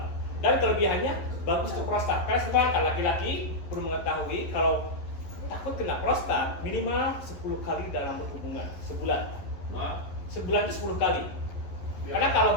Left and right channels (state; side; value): late; right; 11 ms